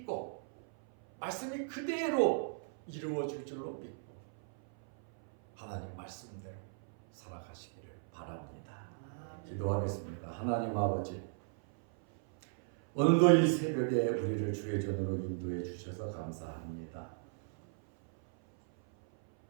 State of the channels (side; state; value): left; silent; 54 dB below the other